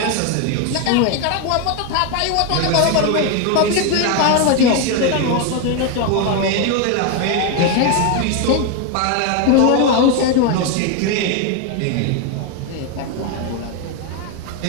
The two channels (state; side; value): different; both; correlation 0.01